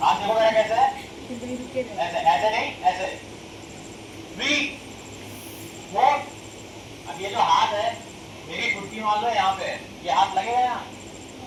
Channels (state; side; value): identical; both; correlation 1.00